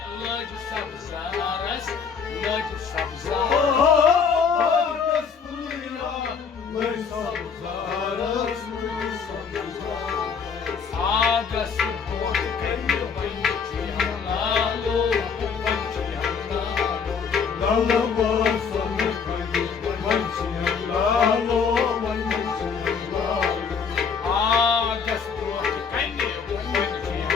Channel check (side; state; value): right; quieter; 6.1 dB